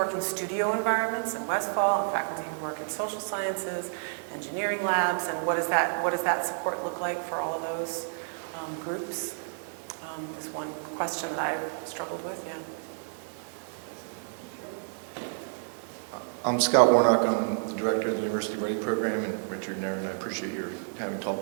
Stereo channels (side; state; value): left; silent; 58 dB below the other